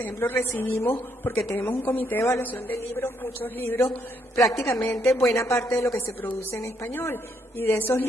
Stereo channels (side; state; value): both; normal; correlation 0.73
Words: ejemplo recibimos, porque tenemos un comité de evaluación de libros, muchos libros, prácticamente buena parte de lo que se produce en español, y de esos